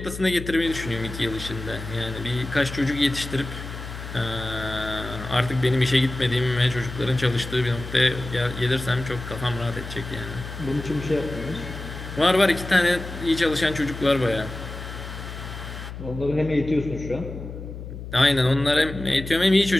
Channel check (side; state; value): left; noise; hum, 10 dB below the sound